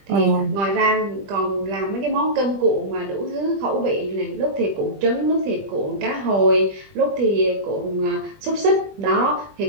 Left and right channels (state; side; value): late; left; 20 ms